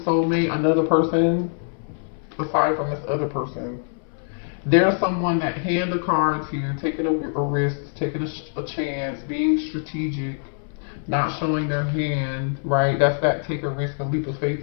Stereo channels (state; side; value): silent; right; 59 dB below the other